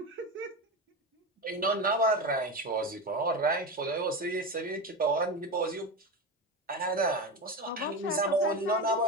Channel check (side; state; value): both; normal; correlation 0.21